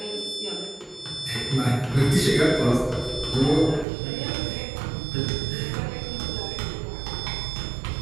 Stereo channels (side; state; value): left; drops out; at 3.9 s